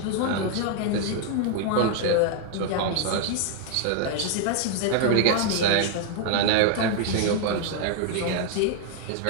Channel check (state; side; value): different; both; correlation 0.00